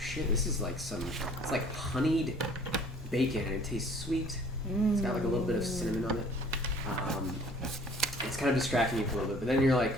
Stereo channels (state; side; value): normal; both; correlation 0.53